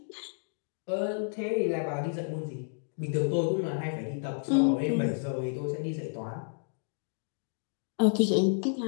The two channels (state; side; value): silent; right; digital silence